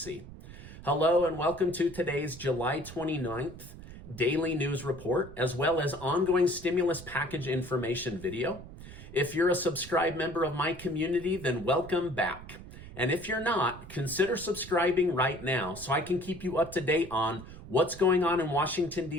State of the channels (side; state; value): right; noise; rumble, 15 dB below the sound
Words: Hello and welcome to today's July 29th daily news report, as well as ongoing stimulus package information video. If you're a subscribed member of my community, then welcome back. And if you're not, consider subscribing right now so I can keep you up to date on what's going on in Washington,